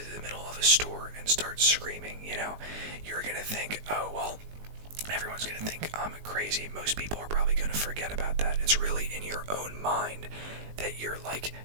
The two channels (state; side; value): late; left; 19 ms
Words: the middle of a store and start screaming, you know, you're gonna think, oh, well, everyone's gonna think I'm crazy. Most people are probably gonna forget about that. It's really in your own mind that you're like